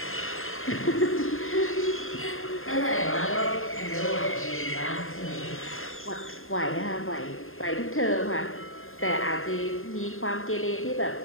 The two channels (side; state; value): right; late; 0.61 ms